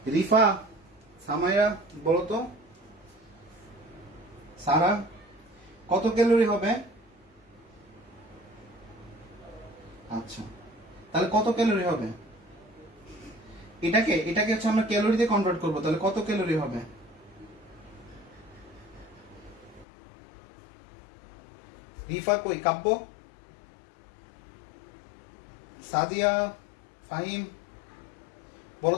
রিফা, সামাইয়া বলো তো, সারা কত ক্যালোরি হবে? আচ্ছা, তাহলে কত ক্যালোরি হবে? এটাকে হচ্ছে আমরা ক্যালোরিতে কনভার্ট করব, তাহলে কত ক্যালোরি হবে? রিফা কই, কাব্য, সাদিয়া, ফাহিম বলো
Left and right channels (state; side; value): drops out; right; at 19.9 s